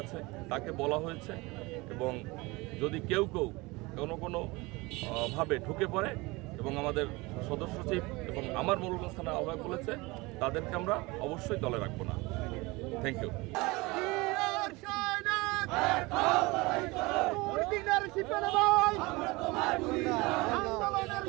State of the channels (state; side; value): quieter; left; 23.5 dB